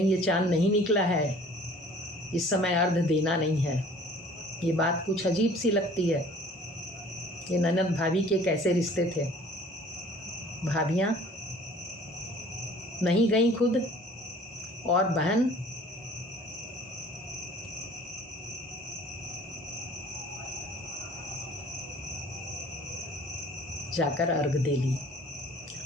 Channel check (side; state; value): both; normal; correlation 0.51